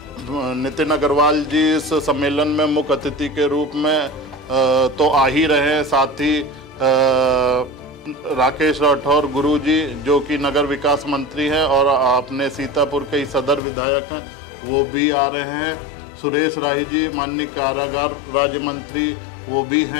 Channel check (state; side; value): drops out; right; at 13.6 s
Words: नितिन अग्रवाल जी इस सम्मेलन में मुख्य अतिथि के रूप में तो आ ही रहे हैं, साथ ही राकेश राठौर गुरुजी जो कि नगर विकास मंत्री हैं और अपने सीतापुर के ही सदर विधायक हैं, वो भी आ रहे हैं। सुरेश राही जी माननीय कारागार राज्य मंत्री, वो भी